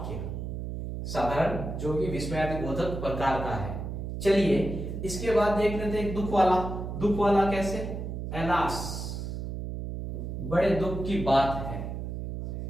साधारण जो कि विस्मयादिबोधक प्रकार का है। चलिए इसके बाद देख लेते हैं एक दुख वाला। दुख वाला कैसे? एलास, बड़े दुख की बात है।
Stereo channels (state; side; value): noise; right; hum, 5 dB below the sound